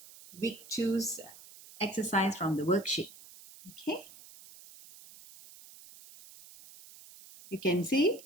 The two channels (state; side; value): noise; right; hiss, 20 dB below the sound